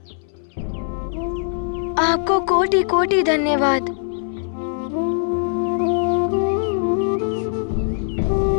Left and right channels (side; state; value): right; silent; 61 dB below the other